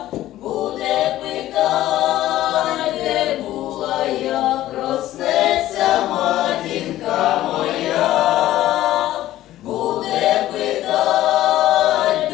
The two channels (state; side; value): quieter; right; 14.3 dB